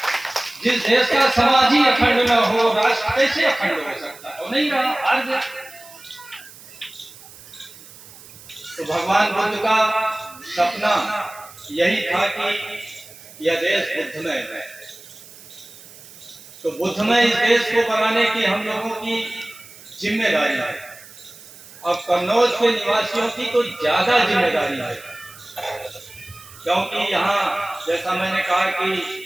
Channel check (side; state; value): right; noise; hiss, 19 dB below the sound